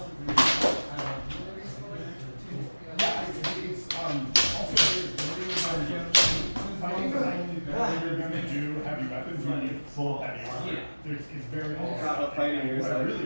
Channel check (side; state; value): both; inverted; correlation -1.00